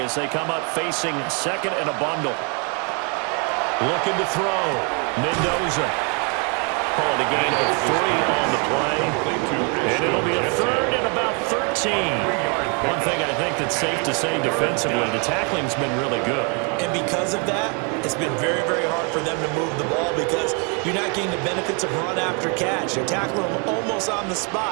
they come up facing second and a bundle. Looking to throw. Mendoza. Calling a gain of 3 on the play. And it'll be a third and about 13. One thing I think that's safe to say defensively, the tackling's been really good. And because of that, it's been very, very hard for them to move the ball because you're not getting the benefits of run after catch. You're tackling them almost on the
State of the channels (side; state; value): left; quieter; 35.8 dB